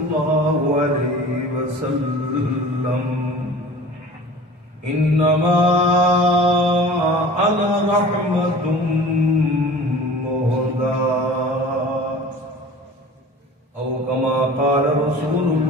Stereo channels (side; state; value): both; normal; correlation 0.42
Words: عليه وسلم إنما أنا رحمة مهداة أو كما قال رسول